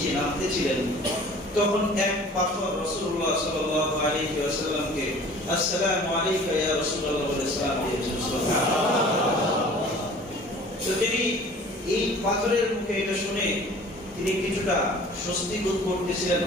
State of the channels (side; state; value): both; normal; correlation 0.47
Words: নামতেছিলেন, তখন এক পাথর রাসূলুল্লাহ সাল্লাল্লাহু আলাইহি ওয়াসাল্লামকে আসসালামু আলাইকা ইয়া রাসূলুল্লাহ বলে সালাম দিয়েছেন। সুবহানাল্লাহ। তো তিনি এই পাথরের মুখে এটা শুনে তিনি কিছুটা স্বস্তি বোধ করতেছিলেন,